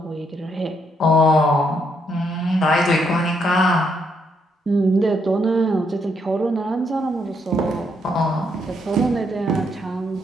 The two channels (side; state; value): both; normal; correlation 0.75